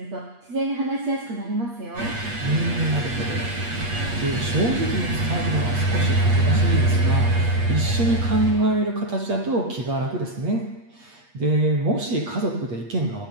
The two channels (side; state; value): left; late; 8.4 ms